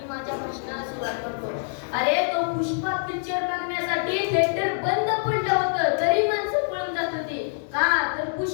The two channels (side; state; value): right; silent; digital silence